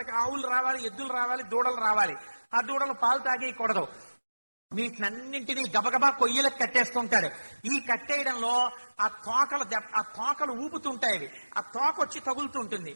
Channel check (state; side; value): inverted; both; correlation -1.00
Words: ఆవులు రావాలి, ఎద్దులు రావాలి, దూడలు రావాలి. ఆ దూడలు పాలు తాగేయకూడదు. వీటినన్నింటినీ గబగబా కొయ్యలకు కట్టేస్తుంటాడు. ఈ కట్టేయడంలో ఆ తోకలు ఊపుతుంటాయి. అవి ఆ తోక వచ్చి తగులుతుంటుంది.